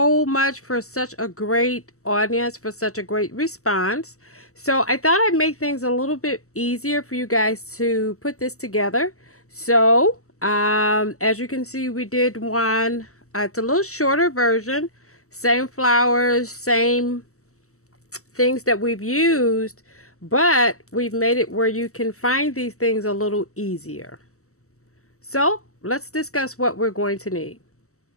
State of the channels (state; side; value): late; right; 0.64 ms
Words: much for such a great audience, for such a great response. So I thought I'd make things a little bit easier for you guys to put this together. So as you can see, we did one. It's a little shorter version. Same flowers, same things that we've used, but we've made it where you can find these things a little easier. So let's discuss what we're going to need.